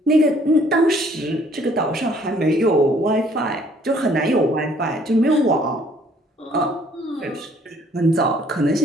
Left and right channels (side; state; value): both; normal; correlation 0.61